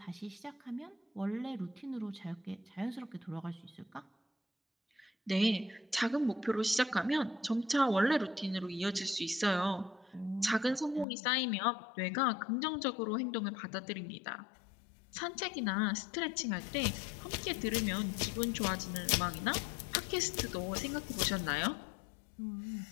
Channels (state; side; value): drops out; right; at 11.1 s